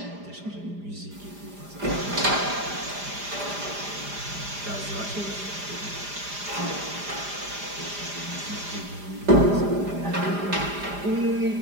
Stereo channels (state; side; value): late; left; 4.9 ms